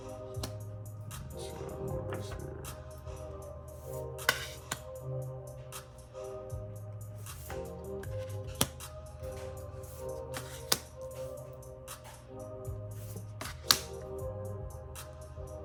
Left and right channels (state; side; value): identical; both; correlation 1.00